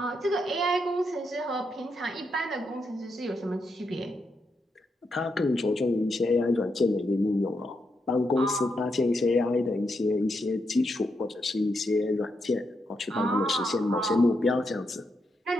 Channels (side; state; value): both; normal; correlation 0.82